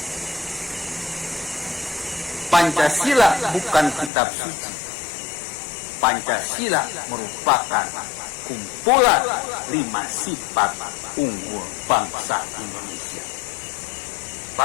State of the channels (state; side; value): drops out; right; at 4.1 s